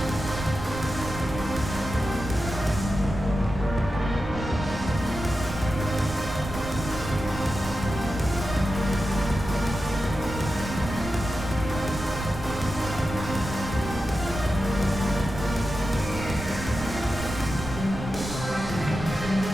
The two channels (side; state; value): right; noise; rumble, 9 dB below the sound